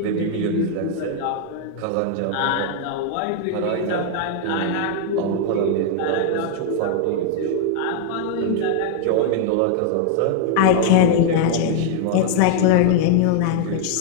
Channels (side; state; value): both; different; correlation 0.00